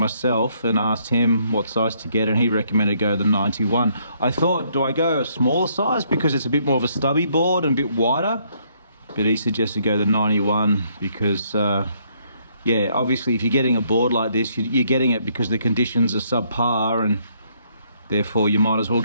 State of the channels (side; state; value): both; inverted; correlation -0.69